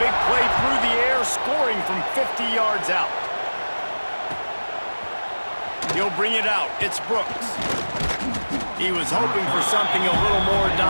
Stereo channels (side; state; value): both; inverted; correlation -1.00